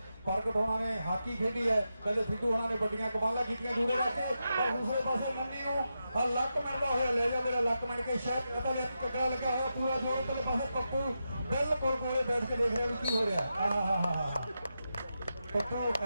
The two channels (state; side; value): inverted; both; correlation -0.88